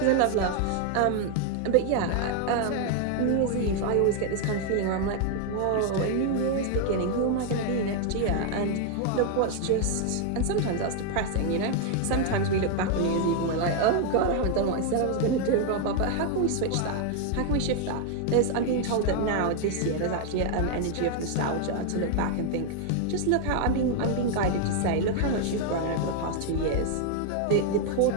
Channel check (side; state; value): both; different; correlation 0.00